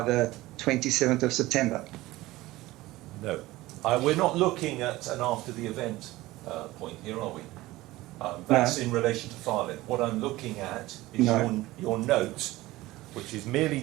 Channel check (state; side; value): quieter; left; 18.3 dB